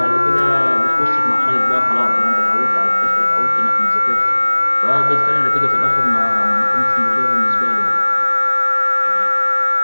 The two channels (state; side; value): inverted; both; correlation -1.00